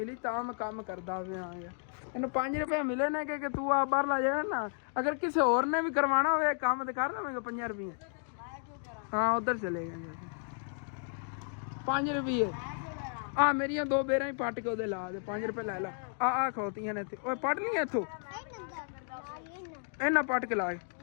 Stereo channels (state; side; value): silent; right; 56 dB below the other